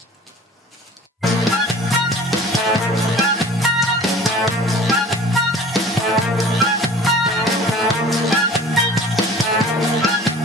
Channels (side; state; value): both; normal; correlation 0.45